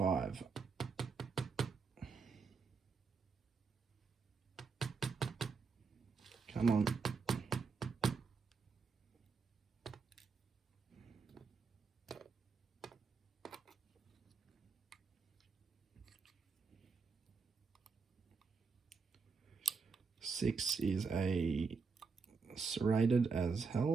Come on. Six is a serrated as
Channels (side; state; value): left; quieter; 4.9 dB